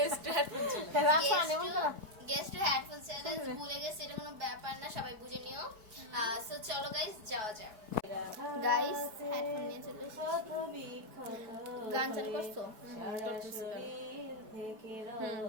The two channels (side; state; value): left; late; 4.6 ms